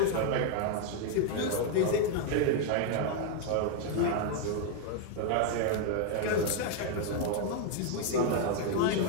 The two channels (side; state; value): both; different; correlation 0.00